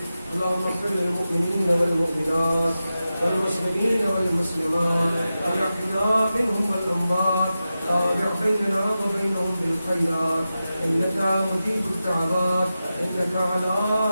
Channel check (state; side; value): inverted; both; correlation -0.92